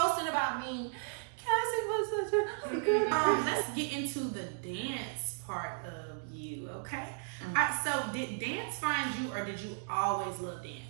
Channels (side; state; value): left; silent; digital silence